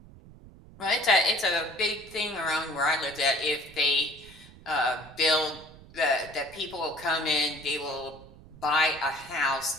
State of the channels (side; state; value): right; noise; rumble, 20 dB below the sound